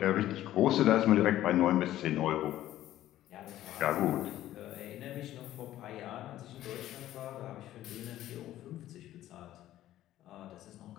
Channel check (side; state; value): right; quieter; 13.6 dB